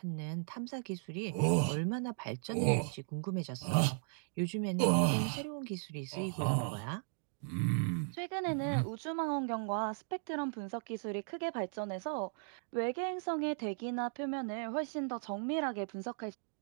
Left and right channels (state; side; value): silent; left; digital silence